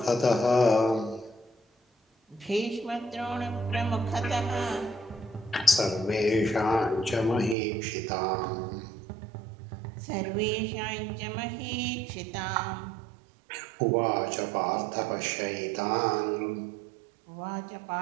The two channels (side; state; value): left; drops out; at 7.6 s